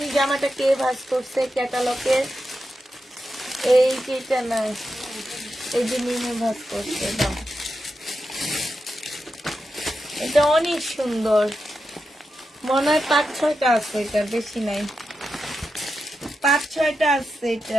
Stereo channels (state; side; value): normal; both; correlation 0.88